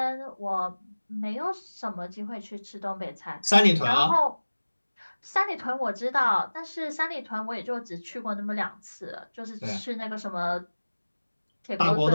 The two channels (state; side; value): inverted; both; correlation -1.00